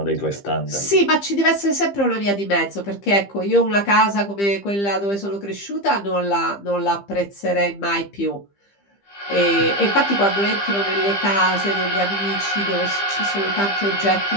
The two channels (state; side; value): late; right; 15 ms